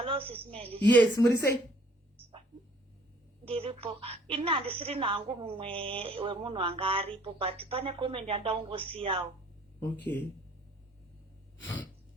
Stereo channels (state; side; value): normal; both; correlation 0.58